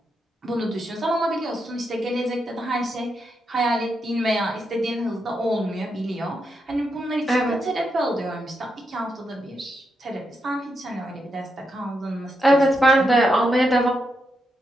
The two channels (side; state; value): both; normal; correlation 0.83